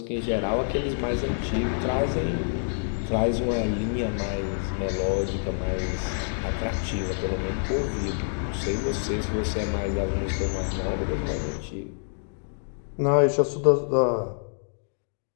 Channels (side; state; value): right; silent; digital silence